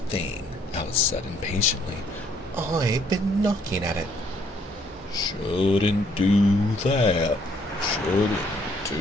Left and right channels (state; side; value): normal; both; correlation 0.66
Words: Alice said impatiently. "I've been knocking at it." "Shouldn't do that. Shouldn't